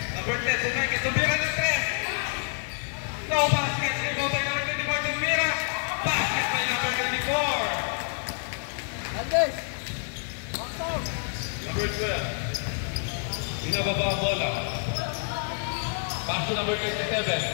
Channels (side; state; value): right; silent; 60 dB below the other